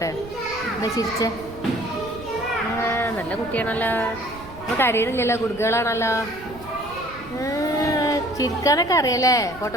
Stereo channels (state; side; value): noise; right; rumble, 17 dB below the sound